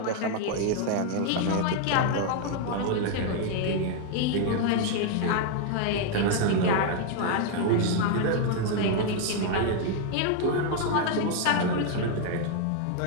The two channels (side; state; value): both; different; correlation 0.00